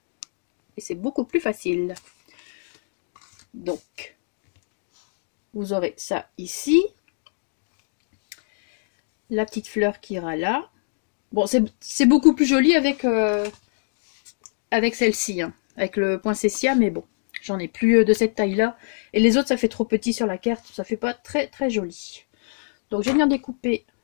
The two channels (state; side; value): silent; right; digital silence